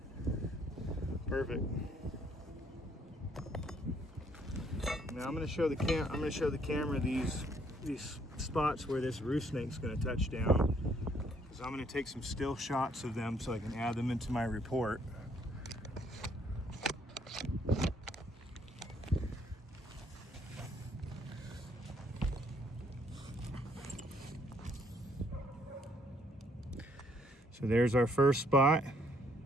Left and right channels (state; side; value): normal; both; correlation 0.67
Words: Perfect. Now I'm going to show the camera these spots where this roof snake's going to touch down, because I'm going to take some still shots of them so I can add them into my report. So there's our first spot.